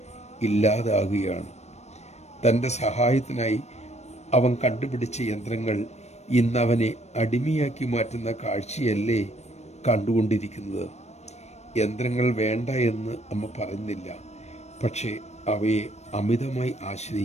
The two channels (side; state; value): right; late; 0.32 ms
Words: ഇല്ലാതാകുകയാണ്. തൻ്റെ സഹായത്തിനായി അവൻ കണ്ടുപിടിച്ച യന്ത്രങ്ങൾ ഇന്നവനെ അടിമയാക്കി മാറ്റുന്ന കാഴ്ചയല്ലേ കണ്ടുകൊണ്ടിരിക്കുന്നത്. യന്ത്രങ്ങൾ വേണ്ട എന്ന് അമ്മ പറയുന്നില്ല, പക്ഷേ അവയെ അമിതമായി